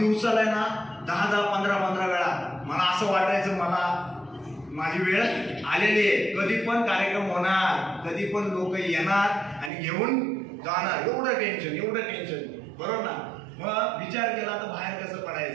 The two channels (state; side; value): drops out; left; at 9.7 s